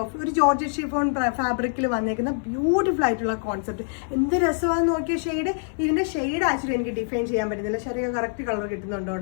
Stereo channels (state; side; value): silent; right; digital silence